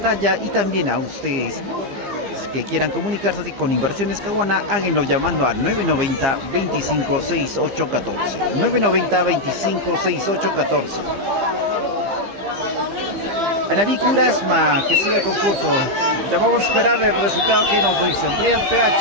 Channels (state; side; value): late; left; 15 ms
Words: y también a ustedes que quieran comunicarse con Inversiones Caguana, háganlo llamando al 990 25 68 14. 990 25 68 14. Anarí Curasma, que siga el concurso. Ya vamos a esperar el resultado que nos dicen. Brian